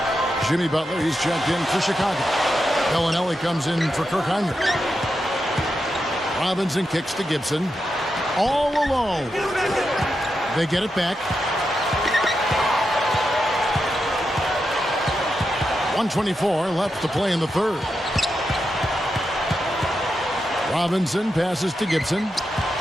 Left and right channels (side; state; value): both; normal; correlation 0.87